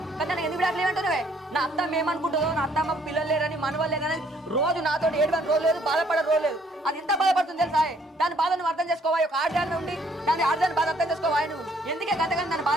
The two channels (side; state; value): both; normal; correlation 0.65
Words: కానీ నాకు ఎందుకు విడాకులు ఏమంటున్నావే? నా అత్తమ్మ ఏమనుకుంటుందో, నా అత్తమ్మకు పిల్లలు లేరని, మనవాళ్ళు లేరని రోజు నాతో ఏడవని రోజు లేదు, బాధపడే రోజు లేదు. అది ఎంత బాధపడుతుంది తెలుసా? దాని బాధ నువ్వు అర్థం చేసుకోవాలి. ఒక ఆడదాన్ని ఉండి దాని ఆడదాన్ని బాధ అర్థం చేసుకోవాలి. నువ్వు ఎందుకే గతగాని దాన్ని